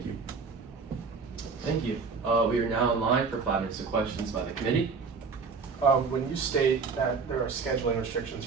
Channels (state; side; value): quieter; left; 5.0 dB